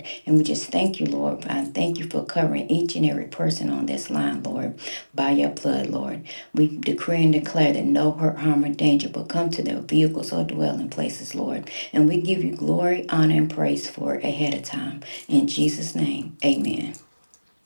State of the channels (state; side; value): inverted; both; correlation -1.00